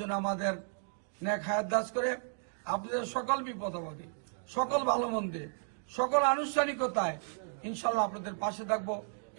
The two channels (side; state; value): left; silent; digital silence